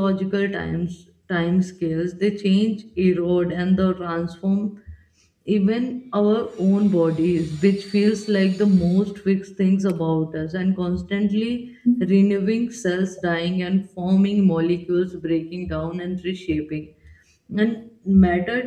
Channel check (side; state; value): both; identical; correlation 1.00